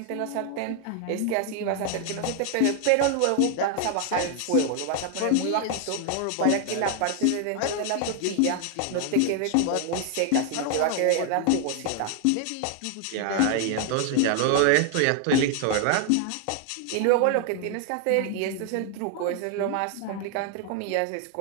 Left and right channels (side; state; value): both; different; correlation 0.00